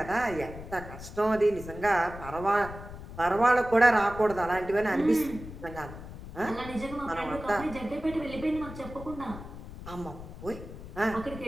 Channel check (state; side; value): noise; left; rumble, 12 dB below the sound